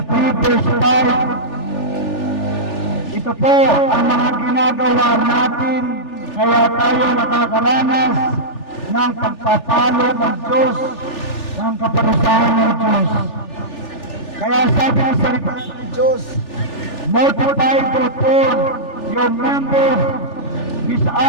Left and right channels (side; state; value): right; late; 3.4 ms